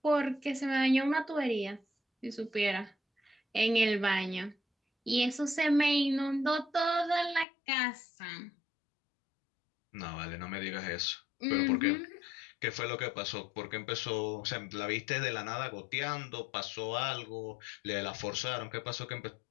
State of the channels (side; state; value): right; drops out; at 7.5 s